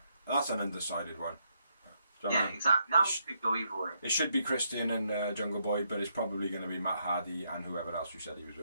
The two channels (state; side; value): inverted; both; correlation -0.77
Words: that's an undecided one. Yeah, exactly. That one could go either way. It should be Christian and Jungle Boy, but it's probably going to be Matt Hardy and whoever else you said he was